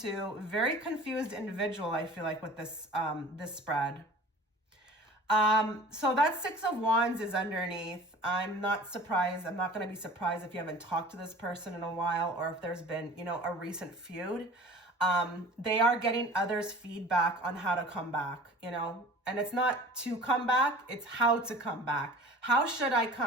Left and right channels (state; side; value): normal; both; correlation 0.42